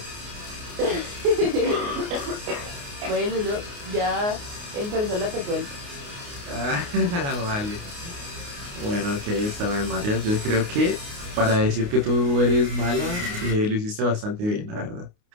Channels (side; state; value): left; late; 29 ms